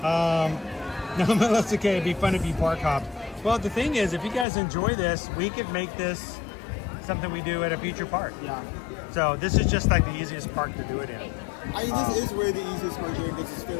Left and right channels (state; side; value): drops out; right; at 4.5 s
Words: No, that's okay. It'd be fun if you park hop. Well, the thing is, if you guys enjoy this, we could make this something we do at a future park. Yeah. So this is just like the easiest park to do it in. I mean, this is really the easiest part doing because it's